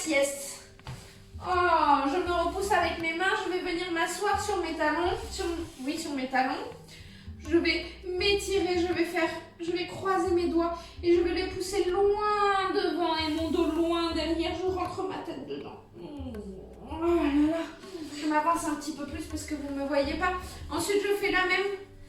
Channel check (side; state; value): both; identical; correlation 1.00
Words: Oh, je me repousse avec mes mains. Je vais venir m'asseoir sur mes talons. Sur mes talons. Je vais m'étirer. Je vais croiser mes doigts et je vais les pousser loin devant et mon dos loin derrière. Je rentre ma tête dedans. Oh là là. Je m'avance un petit peu plus parce que vous ne me voyez pas. Ensuite, je fais